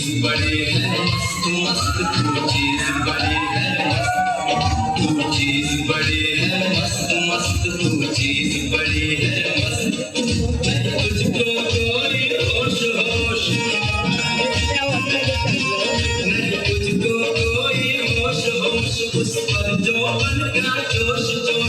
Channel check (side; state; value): both; identical; correlation 1.00